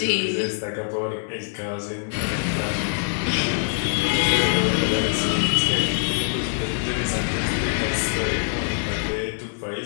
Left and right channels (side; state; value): right; silent; digital silence